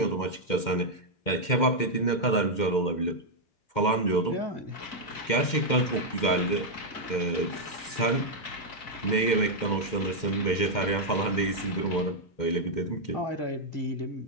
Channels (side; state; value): right; late; 2.1 ms